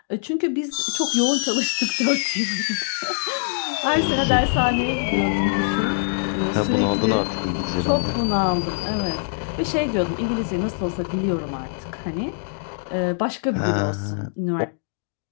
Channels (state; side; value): silent; right; digital silence